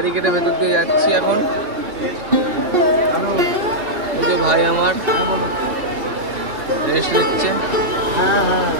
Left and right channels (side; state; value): left; late; 2.7 ms